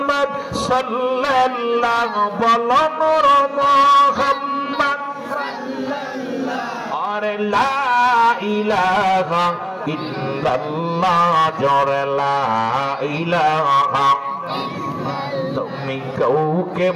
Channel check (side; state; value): both; identical; correlation 1.00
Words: সাল্লাল্লাহু, বলো নূর মুহাম্মদ সাল্লাল্লাহু। আরে লা ইলাহা ইল্লাল্লাহ, জোরে লা ইলাহা। তুমি কাউকে